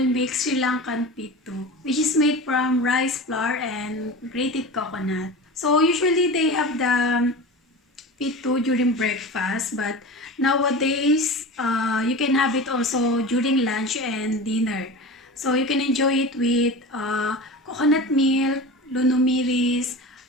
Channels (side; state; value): both; normal; correlation 0.31